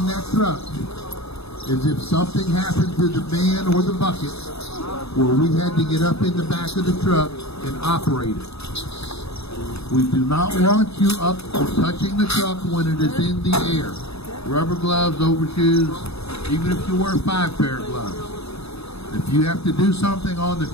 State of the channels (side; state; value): right; late; 0.79 ms